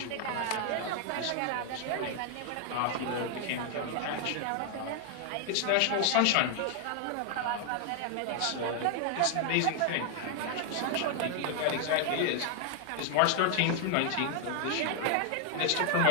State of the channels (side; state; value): both; different; correlation 0.00